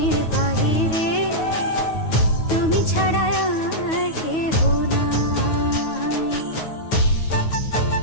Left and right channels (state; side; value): late; right; 9.4 ms